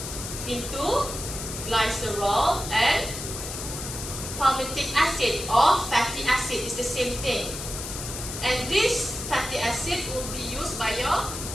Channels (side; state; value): left; noise; hiss, 7 dB below the sound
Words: into glycerol and palmitic acid or fatty acid is the same thing, and this fatty acid will be used by your